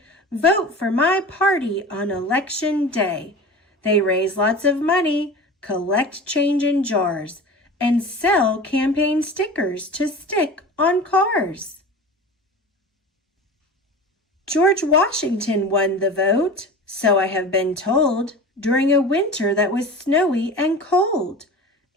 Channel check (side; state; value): both; normal; correlation 0.34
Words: "Vote for my party on Election Day." They raise lots of money, collect change in jars, and sell campaign stickers to stick on cars. George Washington won the vote, so I have been told, during a winter that was snowy and cold.